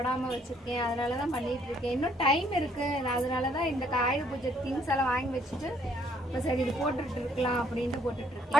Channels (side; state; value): both; normal; correlation 0.66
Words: வச்சிருக்கேன். அதனாலதான் பண்ணிட்டு இருக்கேன். இன்னும் டைம் இருக்கு. அதனாலதான் இந்த ஆயுத பூஜை திங்ஸ் எல்லாம் வாங்கி வச்சுட்டு இப்போ சரி இது போட்டுட்டு இருக்கலாம் அப்படின்ட்டு போட்டுட்டு இருக்கேன்.